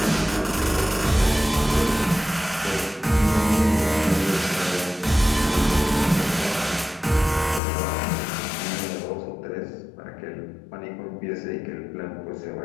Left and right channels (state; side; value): drops out; right; at 7.6 s